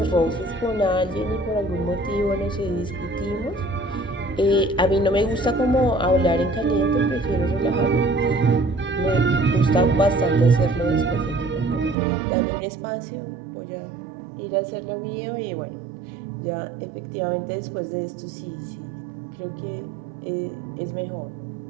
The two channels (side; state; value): left; drops out; at 12.0 s